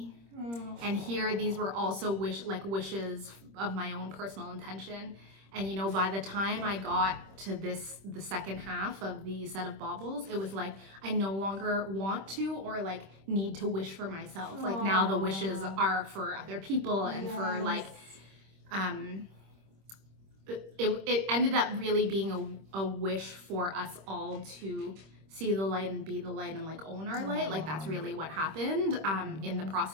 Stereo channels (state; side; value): late; left; 26 ms